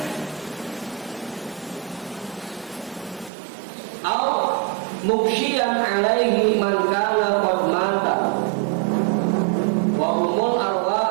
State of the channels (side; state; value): left; drops out; at 3.3 s